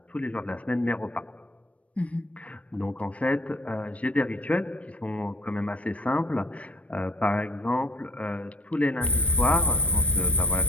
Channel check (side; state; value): right; late; 0.064 ms